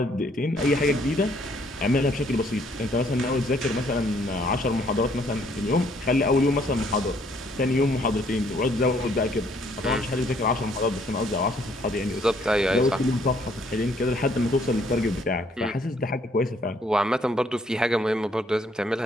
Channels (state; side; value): normal; both; correlation 0.65